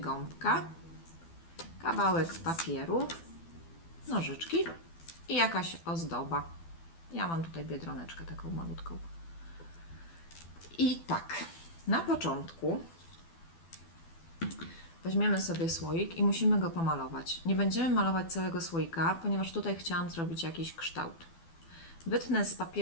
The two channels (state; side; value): late; right; 12 ms